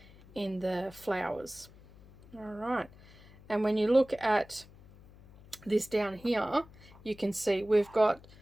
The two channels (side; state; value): left; noise; hum, 22 dB below the sound